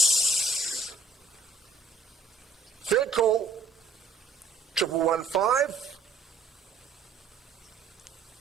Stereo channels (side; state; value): left; quieter; 4.0 dB